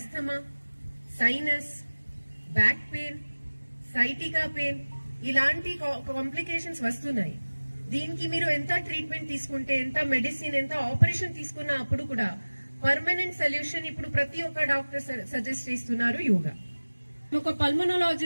sinus, back pain, sciatica pain ఇలాంటి కాంప్లికేషన్స్ వస్తున్నాయి. దీనికి మీరు ఎంత ట్రీట్మెంట్ తీసుకుంటే, ఎంత మెడిసిన్, ఎంత ఆపరేషన్ తీసుకున్నా అప్పుడు కూడా పర్మనెంట్ సొల్యూషన్ ఇప్పుడు ప్రతి ఒక్క డాక్టర్ సజెస్ట్ చేస్తున్నారు యోగా. ఒక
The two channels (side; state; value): both; inverted; correlation -1.00